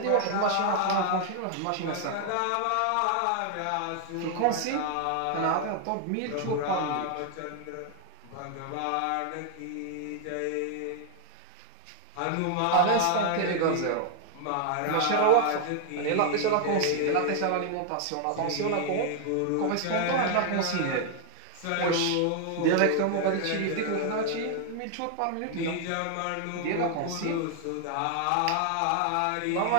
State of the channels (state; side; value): different; both; correlation 0.00